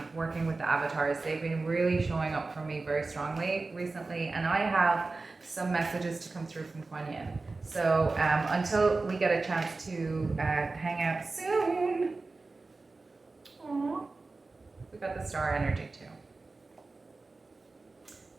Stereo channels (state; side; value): quieter; left; 3.6 dB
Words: working with the avatars. They've been really showing up for me very strongly recently, and I have some messages to come through from Kuan Yin. So until we get a chance to hang out soon, aww, we got the star energy too.